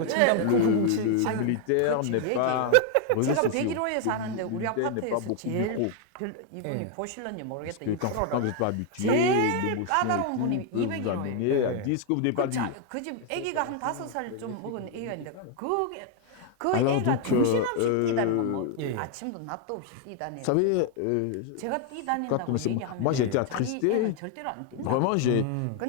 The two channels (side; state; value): both; different; correlation 0.00